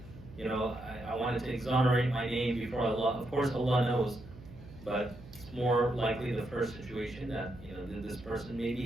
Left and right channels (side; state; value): right; noise; hum, 17 dB below the sound